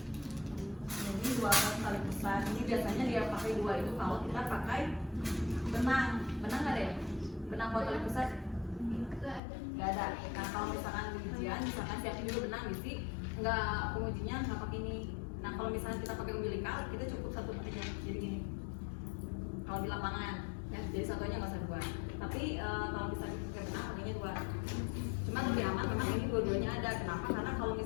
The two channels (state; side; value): drops out; right; at 9.4 s